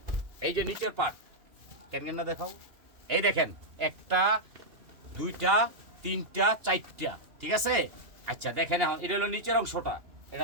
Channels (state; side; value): late; left; 2.9 ms